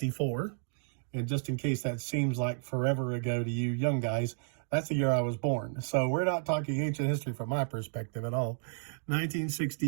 and just in case that seems like forever ago to you young guys, that's the year I was born. So we're not talking ancient history from my perspective at all.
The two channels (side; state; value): left; silent; digital silence